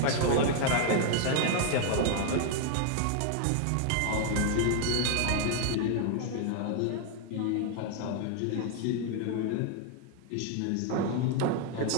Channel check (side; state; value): both; different; correlation 0.00